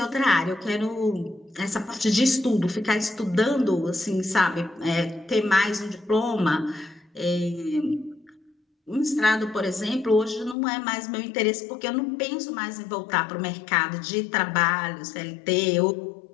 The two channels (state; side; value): drops out; right; at 10.6 s